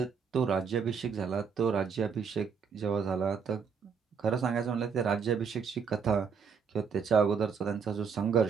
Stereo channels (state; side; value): quieter; left; 6.2 dB